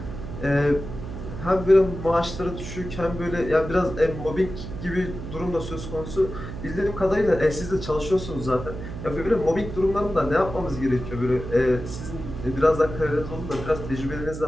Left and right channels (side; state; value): right; noise; hum, 9 dB below the sound